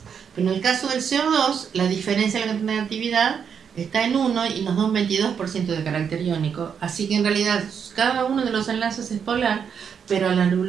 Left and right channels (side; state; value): left; quieter; 7.2 dB